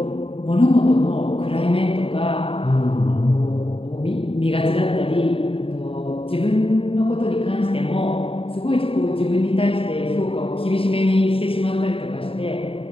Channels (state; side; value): late; right; 0.27 ms